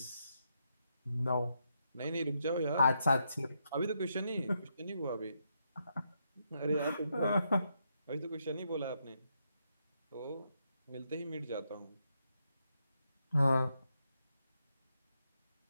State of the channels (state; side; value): inverted; both; correlation -0.81